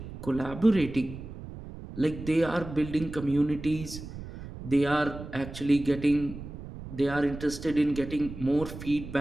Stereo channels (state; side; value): noise; right; rumble, 12 dB below the sound